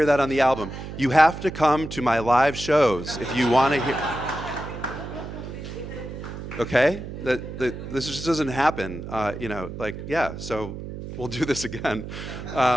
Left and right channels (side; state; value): right; noise; hum, 9 dB below the sound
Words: that on the album. You have to come to my live shows if you want to hear. Okay? This just doesn't happen. So we'll do this again.